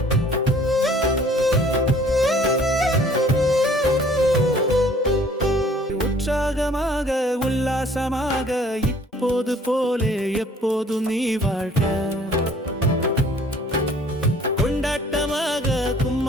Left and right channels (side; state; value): both; normal; correlation 0.55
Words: உற்சாகமாக உல்லாசமாக இப்போது போலே எப்போதும் நீ வாழ்க. கொண்டாட்டமாக